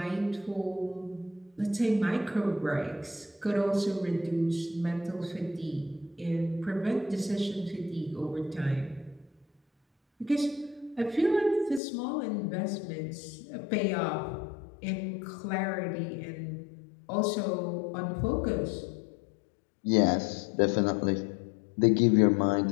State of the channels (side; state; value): right; drops out; at 11.8 s